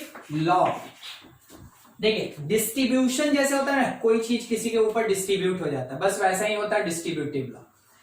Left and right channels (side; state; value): both; identical; correlation 1.00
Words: लॉ। देखिए डिस्ट्रीब्यूशन जैसे होता है ना, कोई चीज किसी के ऊपर डिस्ट्रीब्यूट हो जाता है, बस वैसा ही होता है डिस्ट्रीब्यूटिव लॉ।